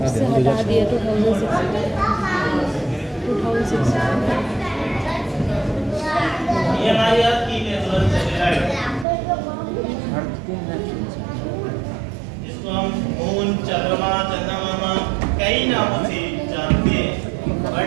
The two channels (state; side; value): drops out; left; at 9.1 s